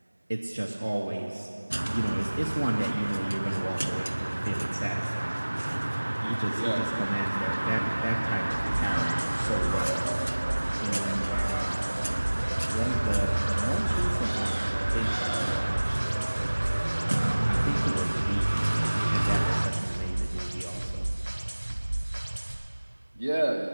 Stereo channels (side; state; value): both; inverted; correlation -1.00